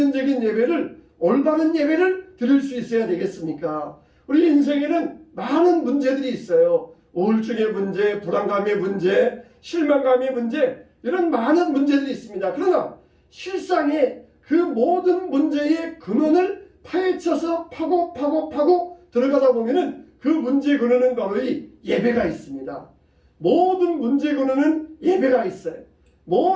예배를 올바른 예배를 드릴 수 있어야 되겠습니까? 우리 인생에는 많은 문제들이 있어요. 우울증의 문제, 불안감의 문제, 실망감의 문제, 이런 많은 문제들이 있습니다. 그러나 실상에 그 모든 문제의 근원을 파헤쳐서 파고 들어가다 보면은 그 문제의 근원은 바로 이 예배가 있습니다. 모든 문제의 근원은 예배가 있어요.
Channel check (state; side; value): identical; both; correlation 1.00